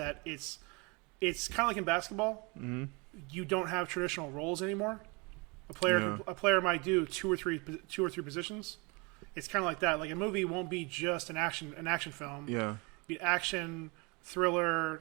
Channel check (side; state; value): left; quieter; 28.9 dB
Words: it's kind of like in basketball. Mm-hmm. You don't have traditional roles anymore. A player might do two or three positions. It's kind of like that. Like a movie won't be just an action film. Yeah. Be action, thriller,